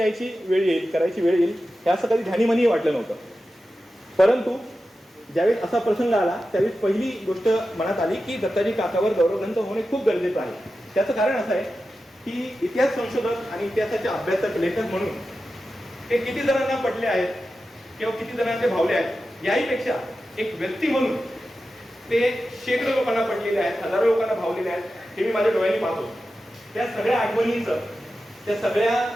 वेळ येईल, करायची वेळ येईल, हे असं कधी ध्यानीमनीही वाटलं नव्हतं. परंतु ज्यावेळेस असा प्रसंग आला त्यावेळेस पहिली गोष्ट मनात आली की दत्ताजी काकावर गौरव ग्रंथ होणे खूप गरजेचं आहे. त्याचं कारण असं आहे की इतिहास संशोधक आणि इतिहासाचे अभ्यासक, लेखक म्हणून ते किती जणांना पटले आहेत किंवा किती जणांना ते भावले आहेत याहीपेक्षा एक व्यक्ती म्हणून ते शेकडो लोकांना पटलेले आहेत, हजारो लोकांना भावलेले आहेत. हे मी माझ्या डोळ्यांनी पाहतो. त्या सगळ्या आठवणींचं, त्या सगळ्या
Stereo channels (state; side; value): normal; both; correlation 0.92